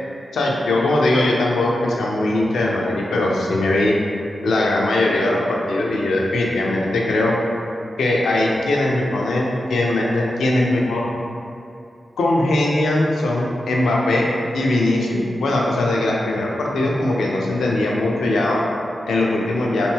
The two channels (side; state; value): both; normal; correlation 0.89